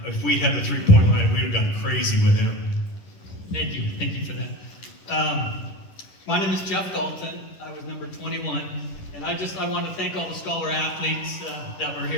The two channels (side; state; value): right; late; 11 ms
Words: If we had the three-point line, we would have gone crazy with him. Thank you for that. My name is Jeff Dalton. I was number 21, and I want to thank all the scholar athletes that were